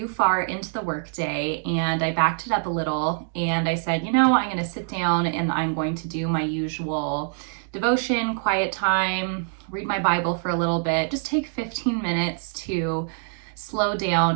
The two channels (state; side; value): silent; left; 57 dB below the other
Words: far into the workday, and I backed it up a little, and I said, I'm going to sit down and I'm going to do my usual devotion, quiet time, read my Bible for a little bit, just take 15 minutes to slow